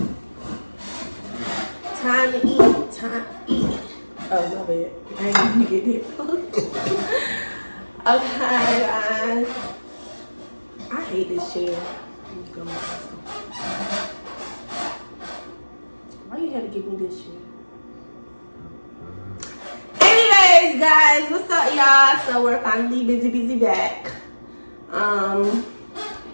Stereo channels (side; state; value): both; inverted; correlation -1.00